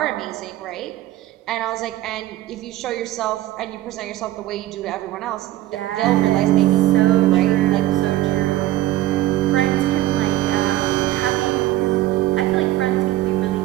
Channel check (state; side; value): quieter; left; 15.1 dB